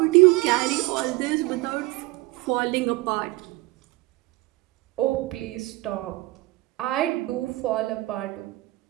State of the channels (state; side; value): quieter; left; 20.5 dB